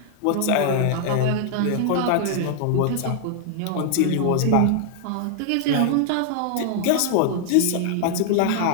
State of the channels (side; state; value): both; different; correlation 0.00